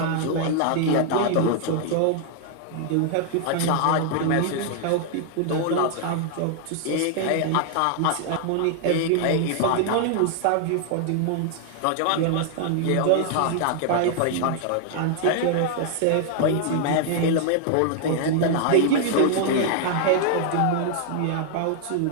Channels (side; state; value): both; different; correlation 0.00